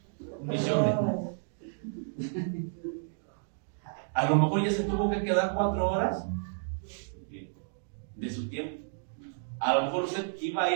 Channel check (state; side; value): silent; left; digital silence